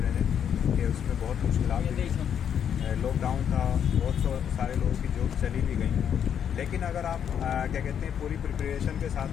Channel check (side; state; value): right; quieter; 8.5 dB